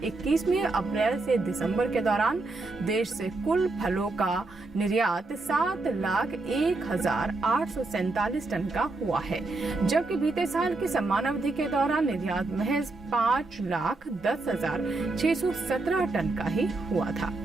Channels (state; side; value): quieter; left; 3.3 dB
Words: में अप्रैल से दिसंबर के दौरान देश से कुल फलों का निर्यात 7,01,847 टन का हुआ है, जबकि बीते साल की समान अवधि के दौरान निर्यात महज 5,10,617 टन का ही हुआ था।